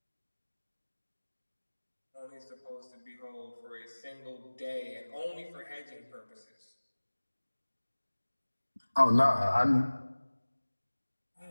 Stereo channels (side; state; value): both; inverted; correlation -1.00